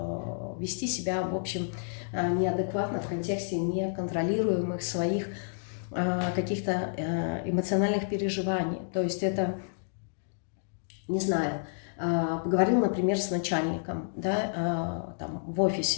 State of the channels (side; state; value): right; silent; digital silence